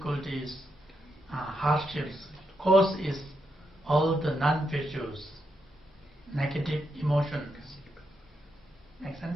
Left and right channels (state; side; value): normal; both; correlation 0.82